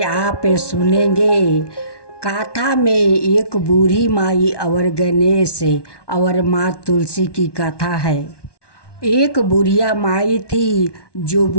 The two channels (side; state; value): right; late; 1.2 ms